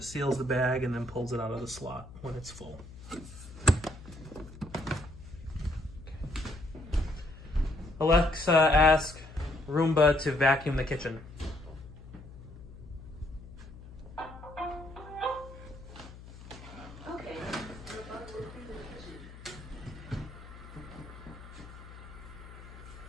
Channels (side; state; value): left; noise; hum, 16 dB below the sound